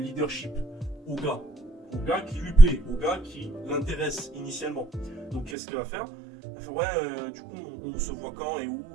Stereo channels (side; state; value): left; drops out; at 5.6 s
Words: au gars qui lui plaît, au gars qui l'intéresse initialement. Donc qu'est-ce qu'elle va faire? Elle fait ouais du coup on se voit quand et où